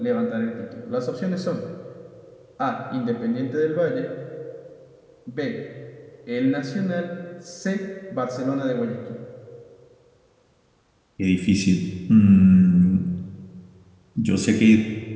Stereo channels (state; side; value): identical; both; correlation 1.00